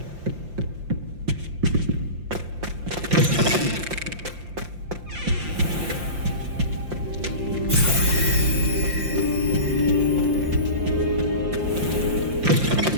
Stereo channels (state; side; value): late; left; 5.7 ms